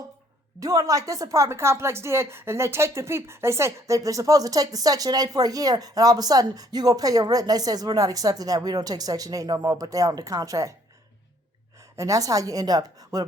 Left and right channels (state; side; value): normal; both; correlation 0.63